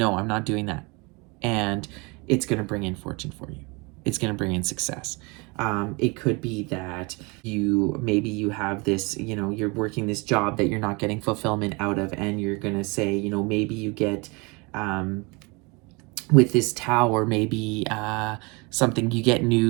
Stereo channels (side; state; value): left; quieter; 28.1 dB